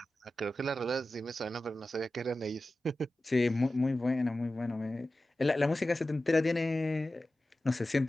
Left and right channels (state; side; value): normal; both; correlation 0.94